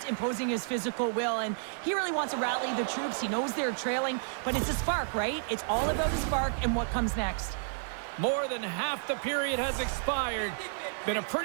imposing his physical will, and he really wants to rally the troops. He knows they're trailing, but it's a spark, right? It's all about the spark and what comes next. More than half the period has expired. Been a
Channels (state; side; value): silent; left; digital silence